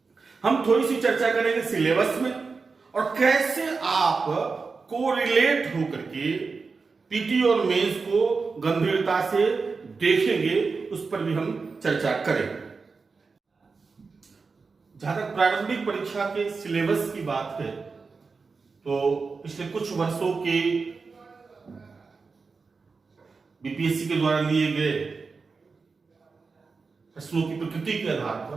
हम थोड़ी सी चर्चा करेंगे सिलेबस में और कैसे आप कोरिलेट होकर के पीटी और मेंस को गंभीरता से देखेंगे, उस पर भी हम चर्चा करेंगे। जहां तक प्रारंभिक परीक्षा के सिलेबस की बात है तो पिछले कुछ वर्षों के बीपीएससी के द्वारा लिए गए प्रश्नों की प्रकृति के आधार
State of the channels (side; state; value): left; quieter; 4.6 dB